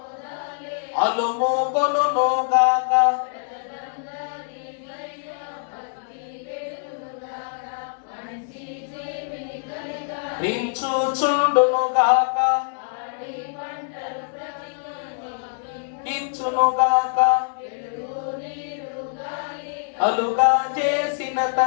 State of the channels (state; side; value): silent; right; digital silence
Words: అలుమోకొనుగాక, రించుచుండునుగాక, ఇచ్చునుగాక, అలుగా చేసిన